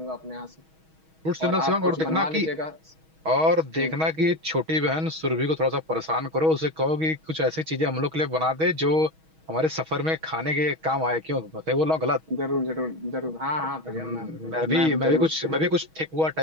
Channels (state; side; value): late; left; 6.3 ms